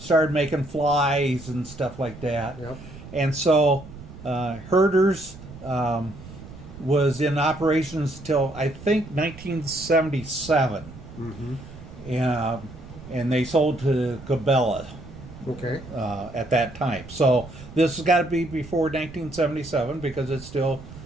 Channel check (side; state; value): right; noise; rumble, 16 dB below the sound